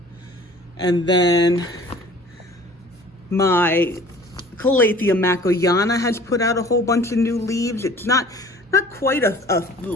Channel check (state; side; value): normal; both; correlation 0.48